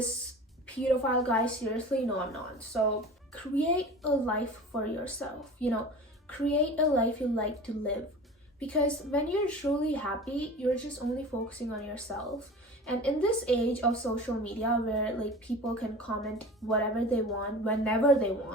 pedophile guy seriously? No, I'm not. So create a life for yourself, you know, create a life you like to live. Because when you're truly happy, you're just only focusing on yourself. And in this age of social media where like people can comment whatever they want, whenever they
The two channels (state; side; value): normal; both; correlation 0.37